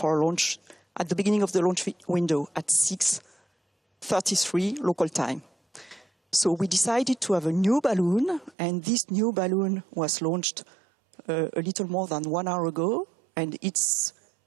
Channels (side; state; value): left; drops out; at 8.6 s